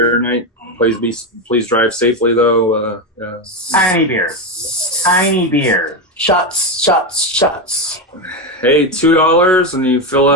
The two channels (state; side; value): normal; both; correlation 0.12